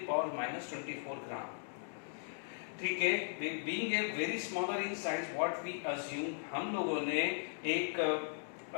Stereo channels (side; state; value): right; silent; digital silence